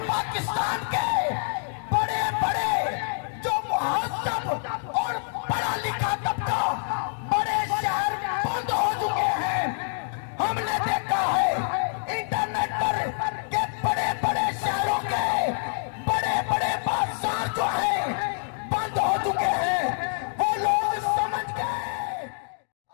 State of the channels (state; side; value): silent; right; digital silence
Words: पाकिस्तान के बड़े बड़े जो मुहज्जब और पढ़ा लिखा तबका बड़े शहर बंद हो चुके हैं। हमने देखा है इंटरनेट पर के बड़े बड़े शहरों के बड़े बड़े बाजार जो हैं बंद हो चुके हैं। वो लोग समझ गए